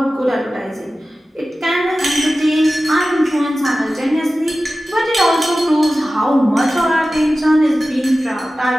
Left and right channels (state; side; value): normal; both; correlation 0.95